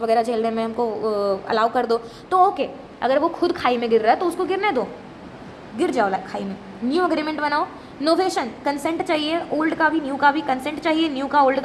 वगैरह झेलने में, हमको अलाउ कर दो, तो ओके. अगर वो खुद खाई में गिर रहा है तो उसको गिरने दो, गिर जाओ खाई में. न्यू अग्रीमेंट बनाओ. नोवेशन कंसेंट चाहिए, ओल्ड का भी न्यू का भी कंसेंट चाहिए, न्यू का ओल्ड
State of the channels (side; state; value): both; identical; correlation 1.00